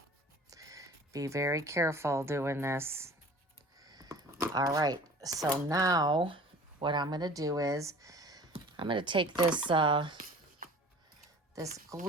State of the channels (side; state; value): both; normal; correlation 0.44